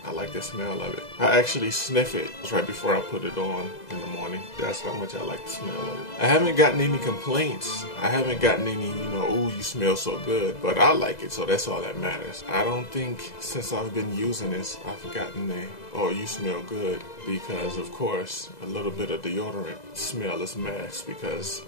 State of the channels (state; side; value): late; right; 2.0 ms